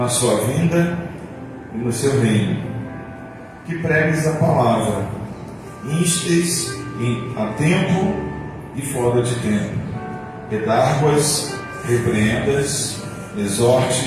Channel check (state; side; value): identical; both; correlation 1.00